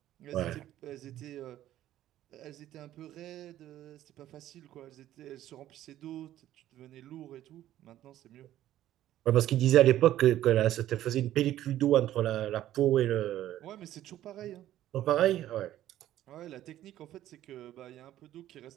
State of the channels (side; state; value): left; quieter; 13.1 dB